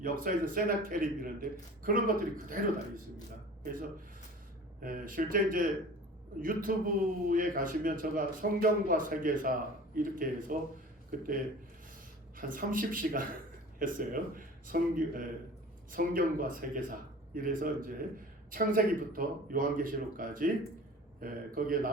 역사에서 세나케립이라는데 그런 것들이 그대로 다 있습니다. 그래서 실제 이제 유튜브에 가시면 제가 성경과 세계사 이렇게 해서 그때 한 30시간 했어요. 성경과 세계사 이래서 이제 창세기부터 요한계시록까지 거기에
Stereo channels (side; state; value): both; normal; correlation 0.41